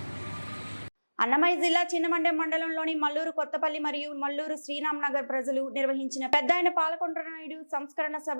అన్నమయ్య జిల్లా చిన్నమండెం మండలంలోని మల్లూరు కొత్తపల్లి మరియు మల్లూరు శ్రీరామ్ నగర్ ప్రజలు నిర్వహించిన పెద్దాయన పాలకొండ నాయుడు సంస్కరణ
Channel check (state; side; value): inverted; both; correlation -1.00